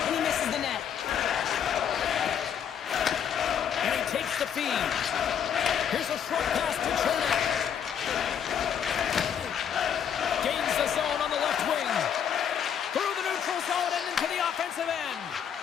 he misses the net. And he takes the feed. Here's a short pass to Chernak. Gains the zone on the left wing. Through the neutral zone and into the offensive end.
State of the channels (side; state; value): right; quieter; 8.3 dB